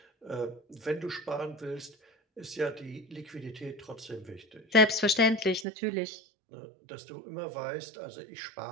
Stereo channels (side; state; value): left; drops out; at 5.7 s